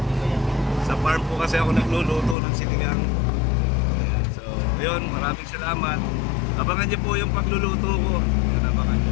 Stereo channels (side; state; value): right; drops out; at 2.4 s